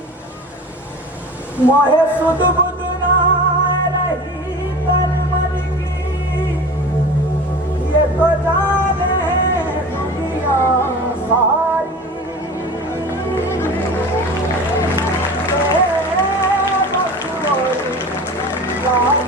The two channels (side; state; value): both; normal; correlation 0.36